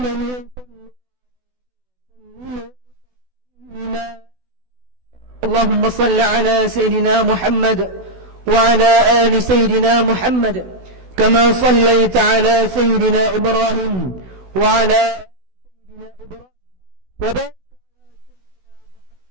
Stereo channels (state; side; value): late; left; 16 ms